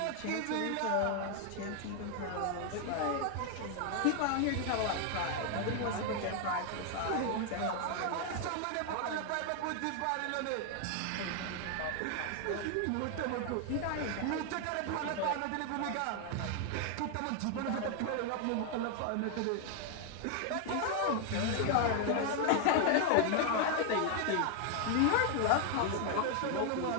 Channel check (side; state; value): both; different; correlation 0.00